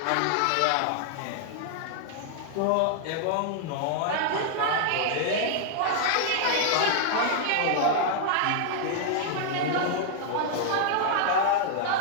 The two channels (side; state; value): both; different; correlation -0.01